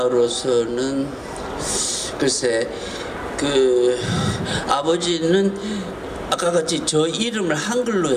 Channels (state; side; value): identical; both; correlation 1.00